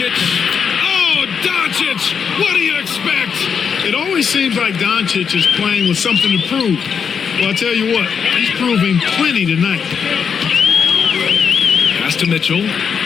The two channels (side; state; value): right; quieter; 6.7 dB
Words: Oh, Doncic! What do you expect? It always seems like Doncic is playing with something to prove. Well, I'll tell you what, he's proving plenty tonight. Pass to Mitchell.